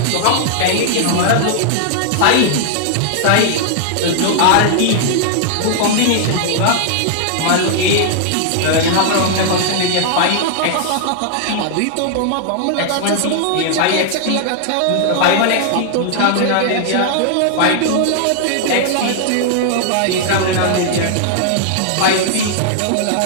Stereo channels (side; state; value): both; different; correlation -0.01